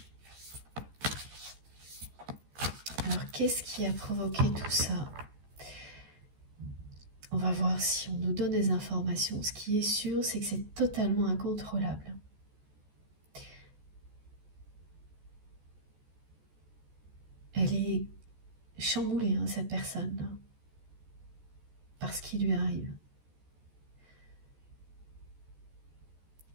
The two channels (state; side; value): late; left; 14 ms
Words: Alors qu'est-ce qui a provoqué tout ça? On va voir si on nous donne des informations. Ce qui est sûr, c'est que c'est totalement incontrôlable. Elle est chamboulée, hein, cette personne-là, par ce qui lui arrive.